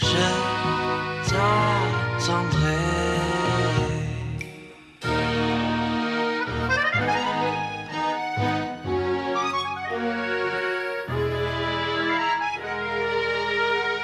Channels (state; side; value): identical; both; correlation 1.00